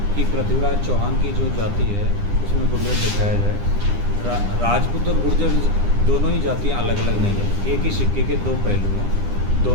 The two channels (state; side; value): late; left; 9.9 ms